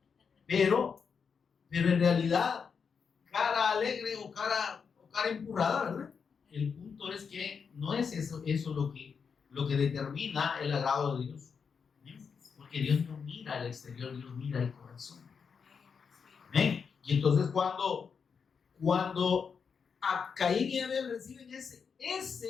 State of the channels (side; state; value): right; quieter; 6.1 dB